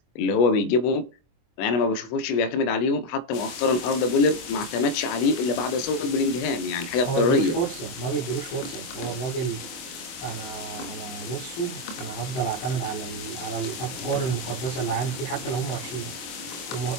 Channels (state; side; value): late; right; 24 ms